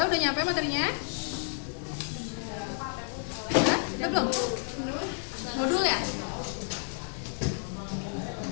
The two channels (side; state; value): right; silent; 57 dB below the other